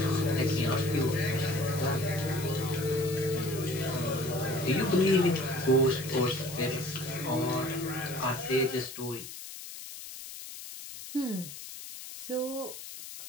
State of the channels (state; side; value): noise; left; hiss, 11 dB below the sound